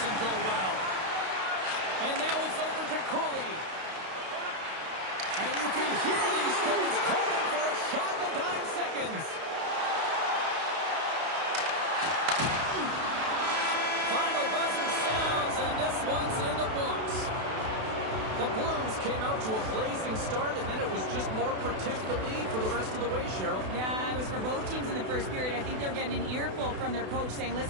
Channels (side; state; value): left; late; 32 ms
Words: go well. And now it's over to Cooley. And you can hear these fans calling for a shot in the dying seconds. Final buzzer sounds, and this one's in the books. The Blues came out to a blazing start, and then it was just more protect the lead for the rest of the way, Cheryl. Yeah, it was for both teams in the first period. I think they're getting an earful from their coach saying,